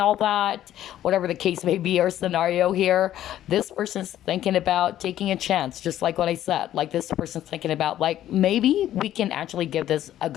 that, whatever the case may be or scenario here, this person's thinking about taking a chance, just like what I said. Like, this person's thinking about, like, maybe we can actually give this a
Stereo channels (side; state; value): right; quieter; 12.3 dB